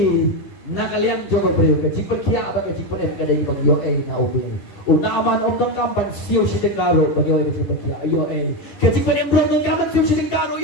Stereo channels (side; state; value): right; late; 10 ms